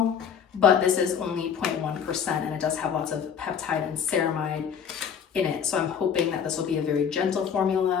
but this is only 0.1% and it does have lots of peptide and ceramide in it. So I'm hoping that this will be a very gentle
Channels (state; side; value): quieter; right; 7.5 dB